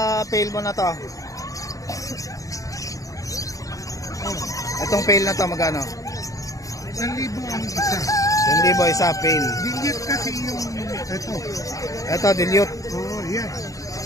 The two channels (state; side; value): late; right; 0.16 ms